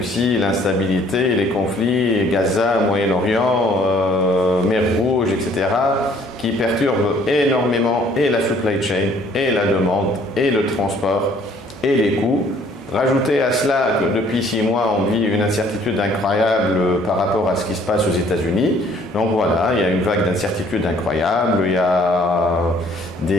l'instabilité, les conflits, Gaza, Moyen-Orient, Mer Rouge, etc., qui perturbent énormément et la supply chain, et la demande, et le transport, et les coûts. Rajoutez à cela que depuis 6 mois, on vit une incertitude incroyable par rapport à ce qui se passe aux États-Unis. Donc voilà, il y a une vague d'incertitude incroyable, il y a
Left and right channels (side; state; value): both; normal; correlation 0.59